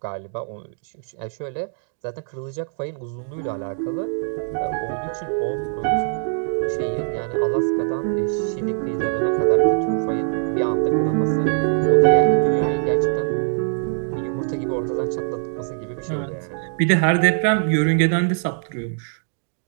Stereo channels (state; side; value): silent; left; digital silence